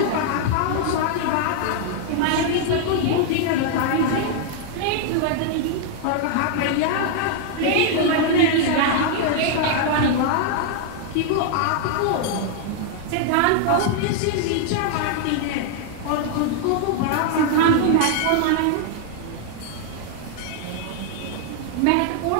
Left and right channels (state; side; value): different; both; correlation 0.00